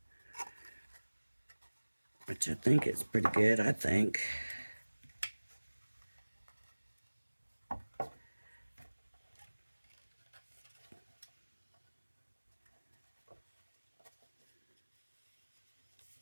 Which I think is pretty good, I think.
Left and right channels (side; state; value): both; inverted; correlation -1.00